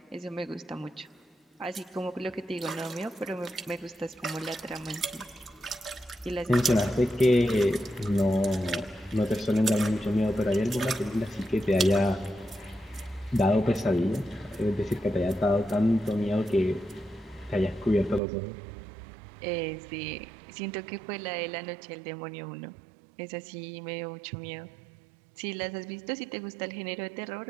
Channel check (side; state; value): left; drops out; at 18.2 s